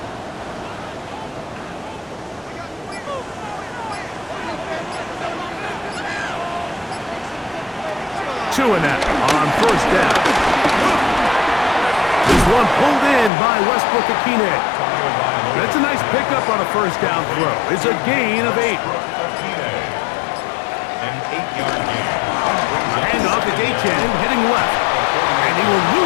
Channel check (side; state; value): right; drops out; at 13.3 s